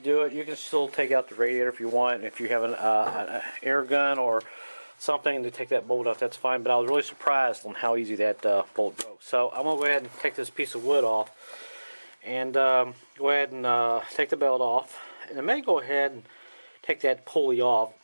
it. You can still take out the radiator if you want. If you have an air gun or something to take that bolt off, that's fine, but I was really surprised on how easy that bolt broke. So I'm going to go ahead and take this piece of wood off and go ahead and take the belt off. And I may go ahead and take that pulley off.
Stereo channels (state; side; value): inverted; both; correlation -1.00